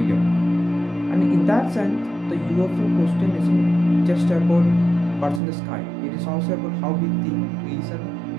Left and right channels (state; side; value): drops out; left; at 5.4 s